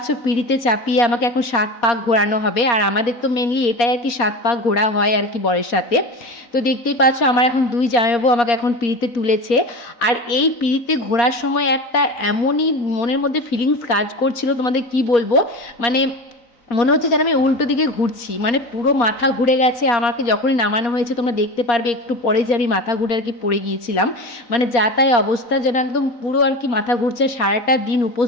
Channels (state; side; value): late; right; 4.2 ms